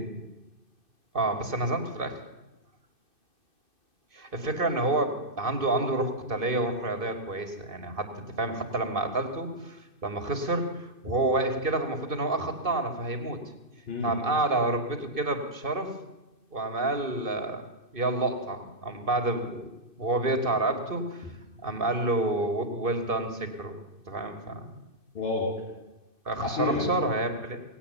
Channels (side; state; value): left; late; 2.6 ms